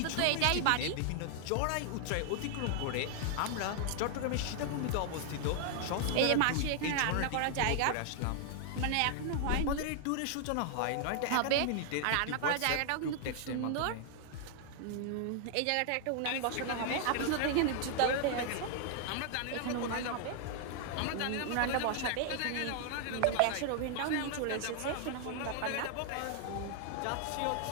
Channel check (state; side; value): different; both; correlation 0.00